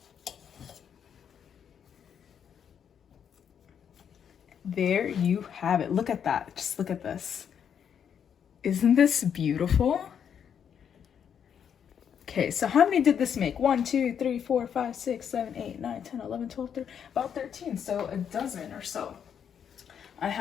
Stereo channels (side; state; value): right; quieter; 8.1 dB